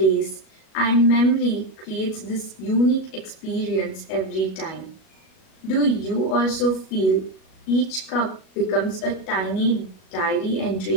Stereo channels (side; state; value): right; late; 37 ms